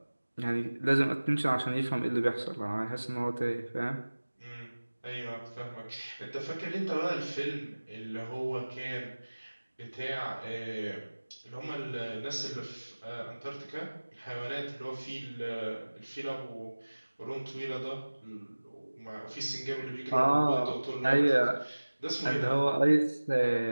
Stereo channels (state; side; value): inverted; both; correlation -1.00